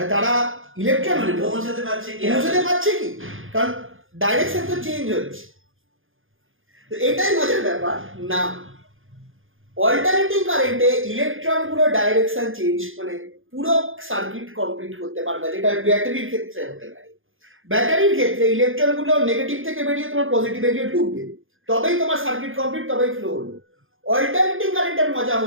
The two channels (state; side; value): late; left; 0.59 ms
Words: তারা ইলেকট্রনগুলো পৌঁছাতে পারছে কি, কারণ ডাইরেকশন তো চেঞ্জ হচ্ছে। তো এটাই মজার ব্যাপার না, অল্টারনেটিং কারেন্টে ইলেকট্রনগুলো ডাইরেকশন চেঞ্জ মানে পুরো সার্কিট কমপ্লিট করতে পারবে, যেটা ব্যাটারির ক্ষেত্রে হতে পারে। ব্যাটারির ক্ষেত্রে ইলেকট্রনগুলো নেগেটিভ থেকে বেরিয়ে তোমার পজিটিভে গিয়ে ঢুকবে, তবেই তোমার সার্কিট কমপ্লিট, তবেই ফ্লো হলো। অল্টারনেটিং কারেন্টের মজা